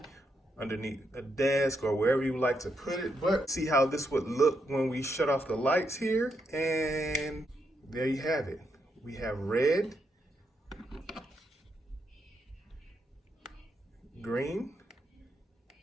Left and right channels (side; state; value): both; normal; correlation 0.80